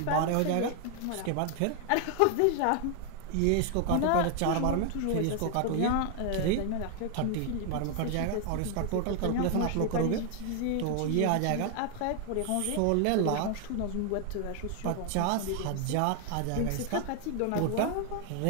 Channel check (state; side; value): different; both; correlation 0.00